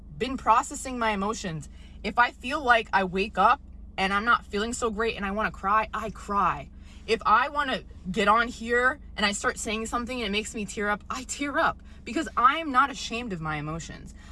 been processing my emotions. If I feel like I wake up and I'm not feeling so great and I want to cry, I cry. If I want to get on here and I start saying something and it makes me tear up, I tear up, because I'm not ashamed of my emotions.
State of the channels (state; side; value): identical; both; correlation 1.00